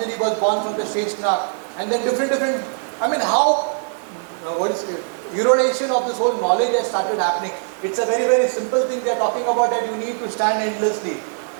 was born from the Sheshnak. And then different, I mean how, what is it? Erodation of this whole knowledge has started happening. It's a very, very simple thing they are talking about, that you need to stand endlessly.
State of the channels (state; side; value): silent; left; digital silence